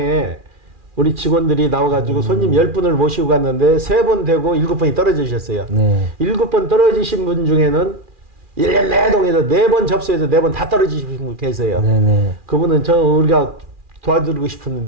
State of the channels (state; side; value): late; left; 2.4 ms